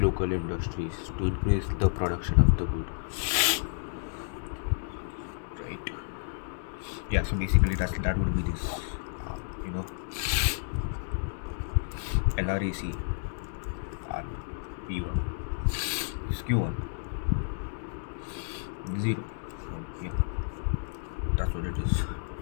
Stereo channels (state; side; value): silent; right; digital silence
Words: industries to increase the production of the good, right? Yeah, so basically that would be this you know LRAC and P1, this Q1 0. Yep, that's what it is.